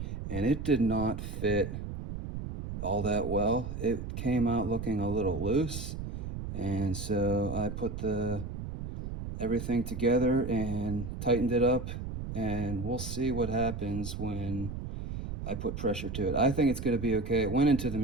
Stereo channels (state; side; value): noise; right; rumble, 6 dB below the sound